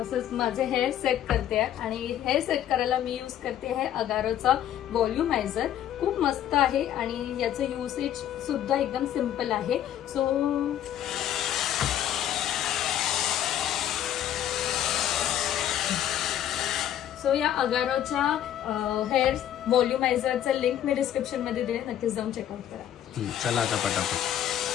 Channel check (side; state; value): right; quieter; 11.0 dB